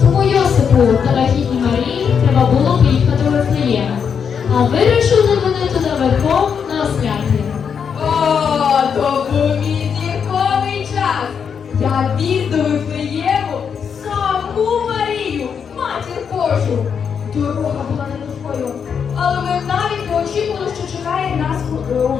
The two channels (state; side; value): quieter; right; 6.9 dB